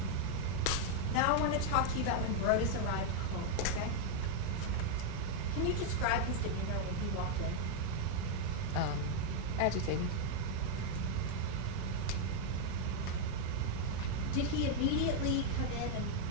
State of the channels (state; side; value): different; both; correlation 0.00